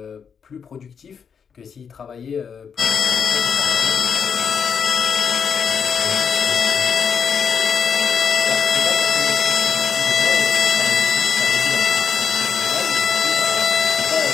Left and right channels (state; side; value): quieter; right; 6.8 dB